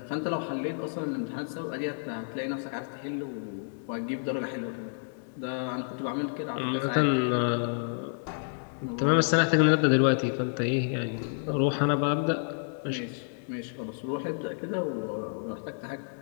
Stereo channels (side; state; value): right; silent; digital silence